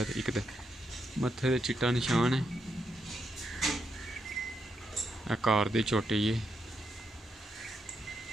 एक मत्थे ते चिट्टा निशान है। कार दी चोटी है।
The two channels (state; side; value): normal; both; correlation 0.81